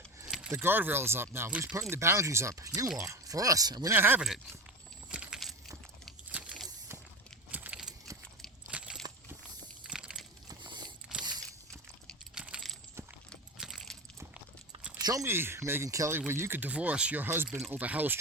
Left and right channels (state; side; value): normal; both; correlation 0.25